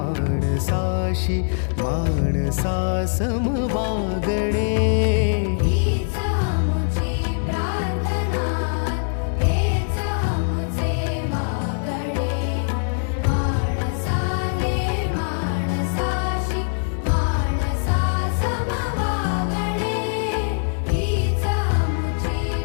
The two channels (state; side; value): silent; right; digital silence